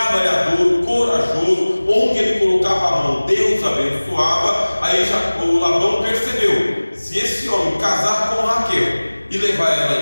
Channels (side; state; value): both; inverted; correlation -1.00